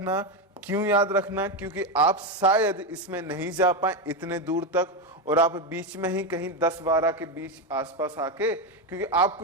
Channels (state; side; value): normal; both; correlation 0.10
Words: क्यों याद रखना, क्योंकि आप शायद इसमें नहीं जा पाए इतने दूर तक, और आप बीच में ही कहीं 10-12 के बीच आसपास आके, क्योंकि